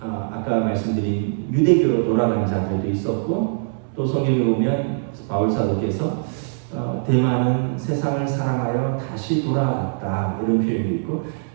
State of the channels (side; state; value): left; silent; 64 dB below the other